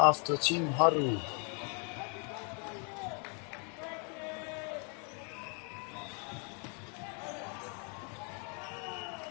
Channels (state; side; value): quieter; right; 37.8 dB